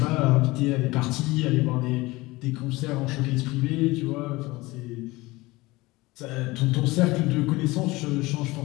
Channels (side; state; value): right; quieter; 21.1 dB